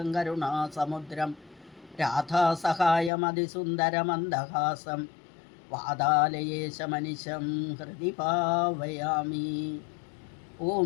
കരുണാസമുദ്രം രാധാസഹായമതിസുന്ദരമന്ദഹാസം വാതാലയേശമനിശം ഹൃദി ഭാവയാമി. ഓം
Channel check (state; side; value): drops out; right; at 3.1 s